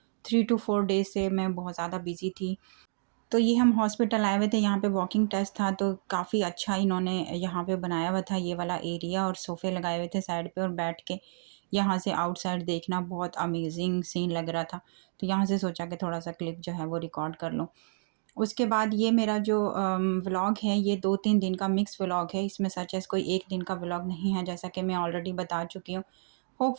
3 टू 4 डेज़ से मैं बहुत ज़्यादा बिज़ी थी। तो ये हम हॉस्पिटल आए हुए थे, यहाँ पे वॉकिंग टेस्ट था तो काफ़ी अच्छा इन्होंने यहाँ पे बनाया हुआ था ये वाला एरिया और सोफ़े लगाए हुए थे साइड पे और बैठ के यहाँ से आउटसाइड देखना बहुत अमेजिंग सीन लग रहा था। तो यहाँ से सोचा कि थोड़ा-सा क्लिप जो है वो रिकॉर्ड कर लूँ। उसके बाद ये मेरा जो व्लॉग है ये 2-3 दिन का मिक्स व्लॉग है। इसमें सच एज़ कोई 1 दिन का व्लॉग नहीं है, जैसा कि मैं ऑलरेडी बता चुकी हूँ।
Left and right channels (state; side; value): silent; left; digital silence